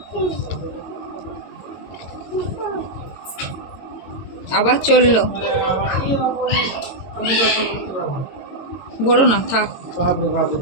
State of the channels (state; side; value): late; right; 22 ms